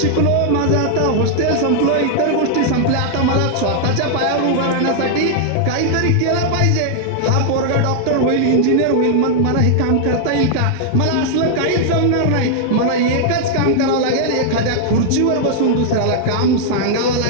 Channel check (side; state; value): both; different; correlation -0.01